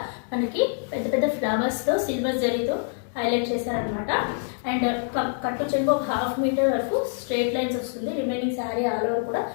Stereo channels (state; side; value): silent; right; 60 dB below the other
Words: మనకి పెద్ద పెద్ద ఫ్లవర్స్తో సిల్వర్ జరీతో హైలైట్ చేశారనమాట. అండ్ కట్టు చెంగు ఒక 1/2 మీటర్ వరకు స్ట్రైట్ లైన్స్ వస్తుంది. రిమైనింగ్ శారీ ఆల్ ఓవర్ కూడా